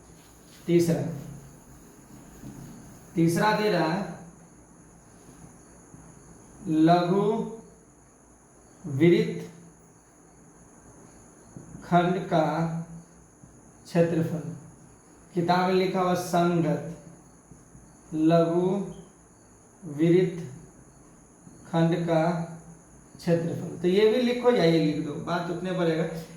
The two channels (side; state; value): both; identical; correlation 1.00